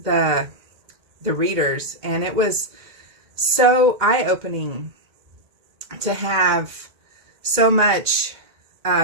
the readers. And it was so eye-opening to have so much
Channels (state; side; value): late; left; 2.0 ms